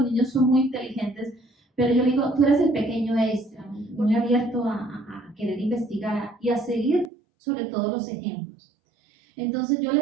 niños son muy inteligentes, pero yo le digo: tú eres el pequeño Einstein, muy abierto a querer investigar y a seguir sobre todo los ejemplos. Entonces yo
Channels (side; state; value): left; drops out; at 7.1 s